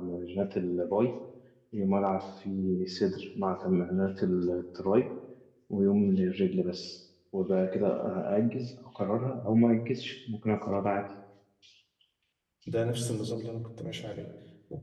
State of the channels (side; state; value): both; identical; correlation 1.00